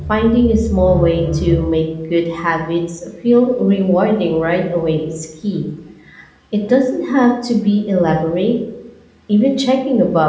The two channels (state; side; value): identical; both; correlation 1.00